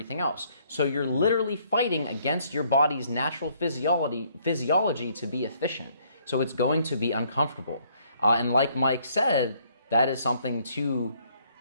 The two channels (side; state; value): both; inverted; correlation -0.66